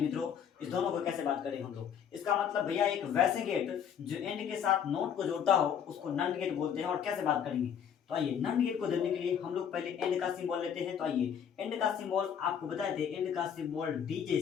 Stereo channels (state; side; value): quieter; right; 8.2 dB